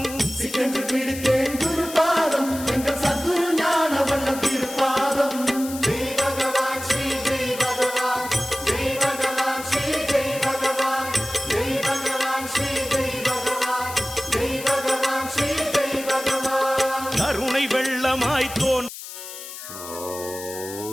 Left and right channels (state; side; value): noise; left; hiss, 11 dB below the sound